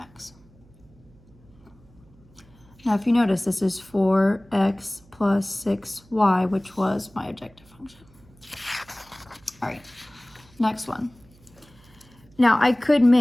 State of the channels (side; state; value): right; noise; hum, 27 dB below the sound